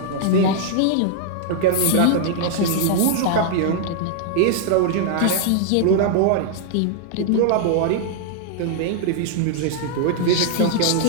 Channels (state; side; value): different; both; correlation -0.01